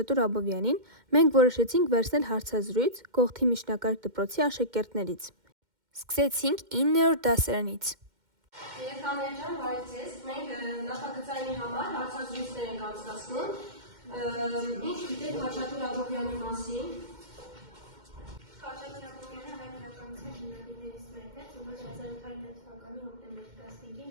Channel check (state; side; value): late; left; 2.1 ms